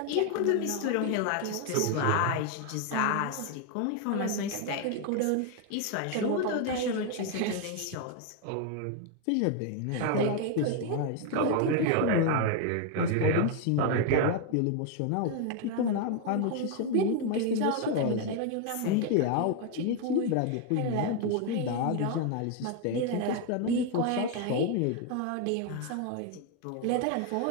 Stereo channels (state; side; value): different; both; correlation 0.01